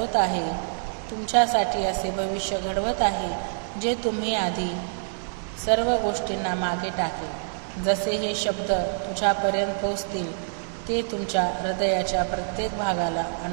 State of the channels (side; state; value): left; silent; 61 dB below the other